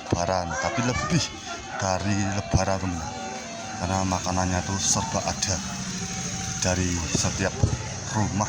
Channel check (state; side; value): identical; both; correlation 1.00